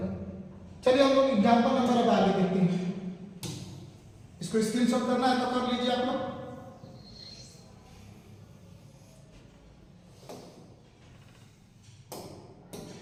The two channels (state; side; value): identical; both; correlation 1.00